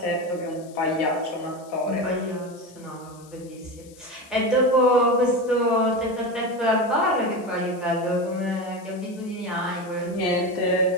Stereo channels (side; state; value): left; noise; hiss, 24 dB below the sound